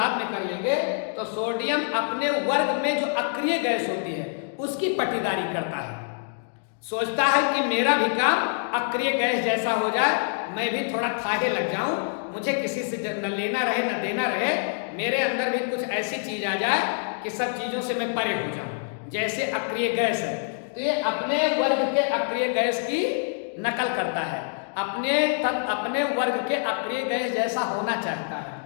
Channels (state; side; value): silent; right; digital silence